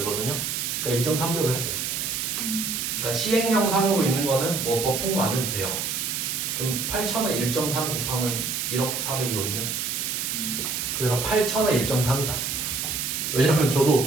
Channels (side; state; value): right; noise; hiss, 2 dB below the sound